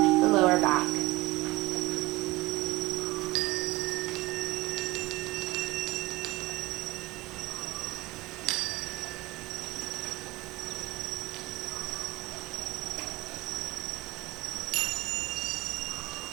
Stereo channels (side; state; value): left; quieter; 20.5 dB